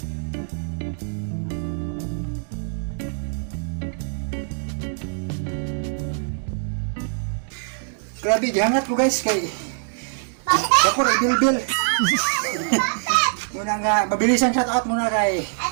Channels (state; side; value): silent; left; 62 dB below the other